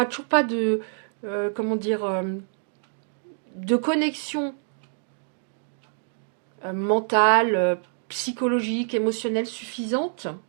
toujours pas de, de connexion mentale, psychologique, émotionnelle suffisante.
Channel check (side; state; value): left; silent; digital silence